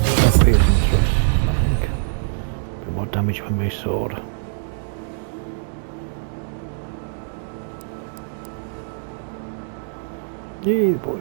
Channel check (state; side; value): silent; left; digital silence